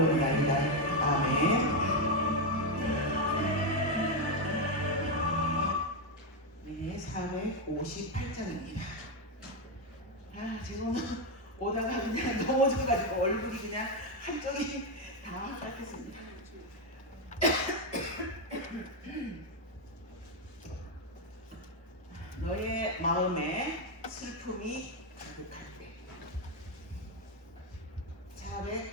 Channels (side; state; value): both; normal; correlation 0.05